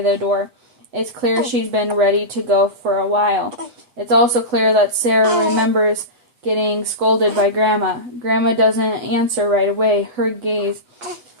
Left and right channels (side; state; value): left; late; 8.0 ms